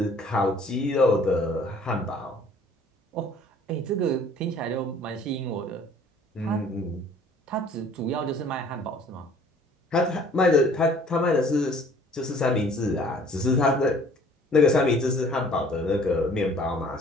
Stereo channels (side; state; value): both; normal; correlation 0.54